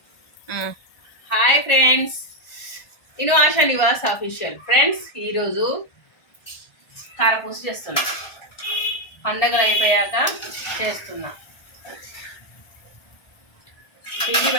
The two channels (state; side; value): late; right; 1.4 ms